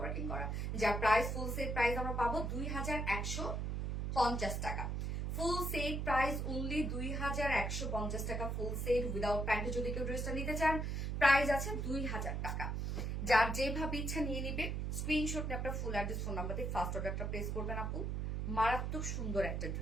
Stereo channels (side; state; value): right; noise; hum, 1 dB below the sound